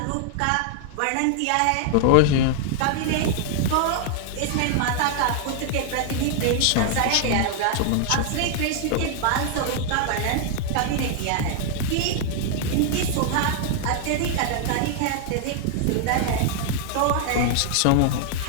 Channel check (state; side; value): different; both; correlation 0.00